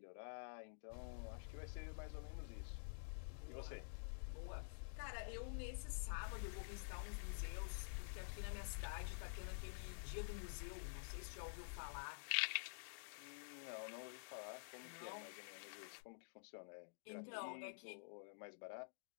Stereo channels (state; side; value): silent; right; digital silence